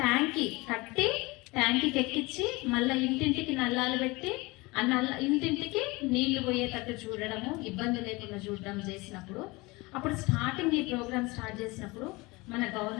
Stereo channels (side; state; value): right; quieter; 23.8 dB